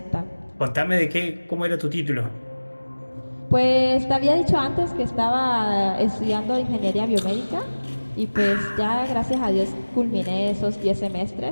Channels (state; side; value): inverted; both; correlation -1.00